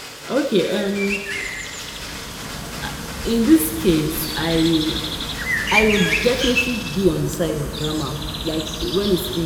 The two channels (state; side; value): identical; both; correlation 1.00